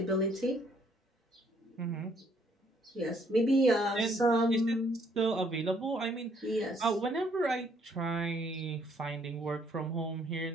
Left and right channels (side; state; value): both; normal; correlation 0.66